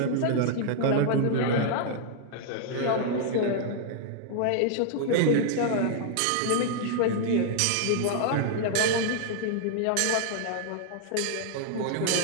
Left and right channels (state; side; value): different; both; correlation -0.01